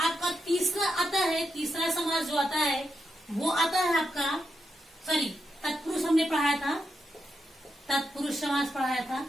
तीसरा आता है, तीसरा समास जो आता है वो आता है आपका, सॉरी, तत्पुरुष हमने पढ़ाया था, तत्पुरुष समास पढ़ाया था।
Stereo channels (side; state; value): both; normal; correlation 0.85